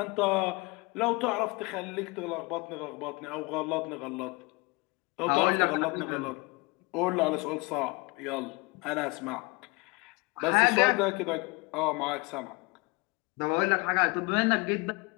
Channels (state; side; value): quieter; right; 26.8 dB